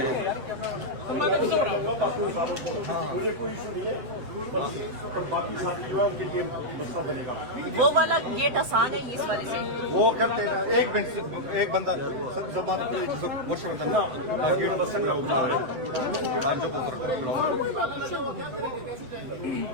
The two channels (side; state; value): left; late; 8.0 ms